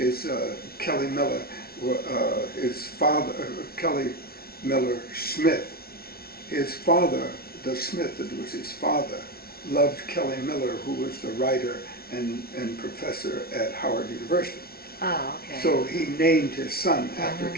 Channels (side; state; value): right; late; 0.44 ms